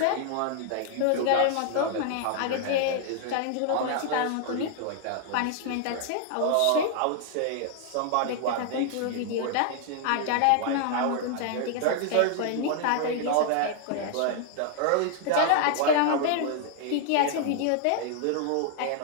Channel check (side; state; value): both; different; correlation 0.00